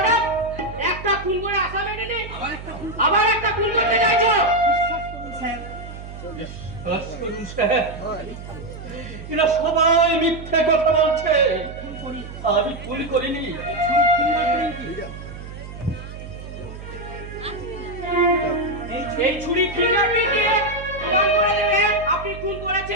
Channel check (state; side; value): noise; right; hum, 12 dB below the sound